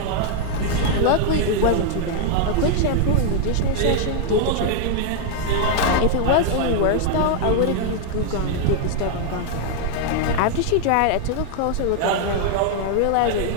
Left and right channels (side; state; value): both; different; correlation 0.00